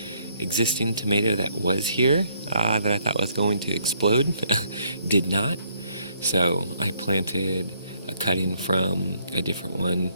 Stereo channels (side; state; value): both; inverted; correlation -0.69